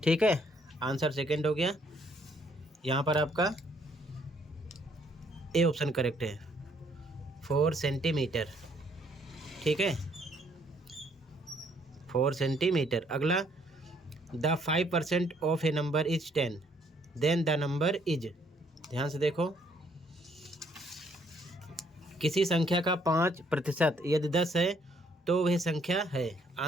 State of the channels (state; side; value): normal; both; correlation 0.66